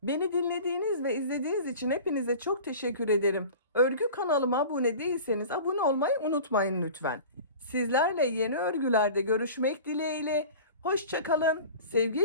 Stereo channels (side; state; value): both; inverted; correlation -0.38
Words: Beni dinlediğiniz ve izlediğiniz için hepinize çok teşekkür ederim. Örgü kanalıma abone değilseniz abone olmayı unutmayın lütfen. Sizlerle yeni örgülerde görüşmek dileğiyle. Hoşça kalın,